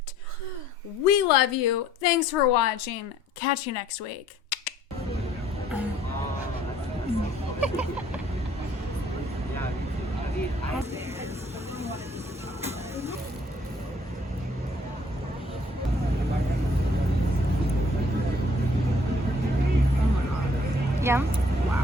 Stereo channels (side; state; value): both; normal; correlation 0.60